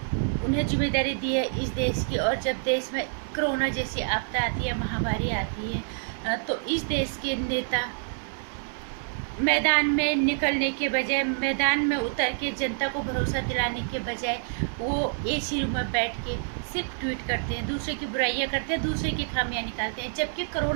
उन्हें जिम्मेदारी दी है इस देश की। और जब देश में कोरोना जैसी आपदा आती है, महामारी आती है, तो इस देश के नेता मैदान में निकलने के बजाय, मैदान में उतर के जनता को भरोसा दिलाने के बजाय वो एसी रूम में बैठ के सिर्फ ट्वीट करते हैं, दूसरे की बुराइयां करते हैं, दूसरे की खामियां निकालते हैं। जबकि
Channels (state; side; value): silent; left; 60 dB below the other